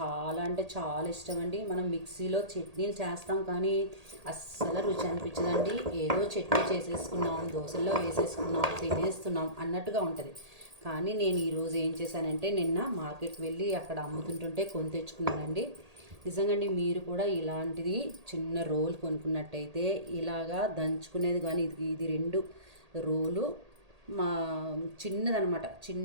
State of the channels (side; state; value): left; late; 1.8 ms